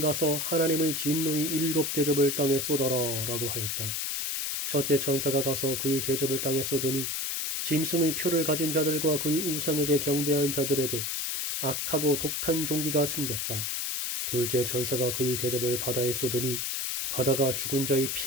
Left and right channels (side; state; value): left; noise; hiss, 1 dB below the sound